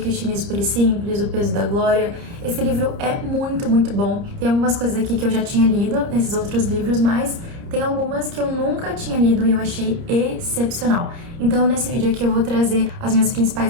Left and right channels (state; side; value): late; left; 30 ms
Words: Puro e Simples, O Peso da Glória. Esse livro é muito bom. Tem algumas coisas aqui que eu já tinha lido nesses outros livros, mas tem algumas que eu nunca tinha lido e eu achei excepcional. Então, nesse vídeo aqui eu vou trazer as minhas